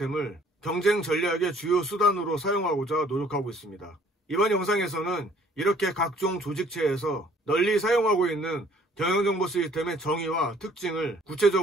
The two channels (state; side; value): normal; both; correlation 0.58